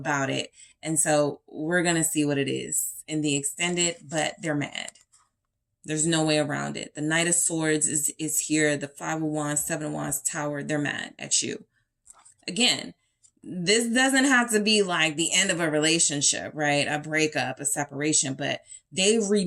it. And so we're going to see what it is in the extended, but they're mad. There's no way around it. The Knight of Swords is here. The 5 of Wands, 7 of Wands, Tower, they're mad at you. Again, this doesn't have to be like the end of a relationship, right? A breakup, a separation, but they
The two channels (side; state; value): both; identical; correlation 1.00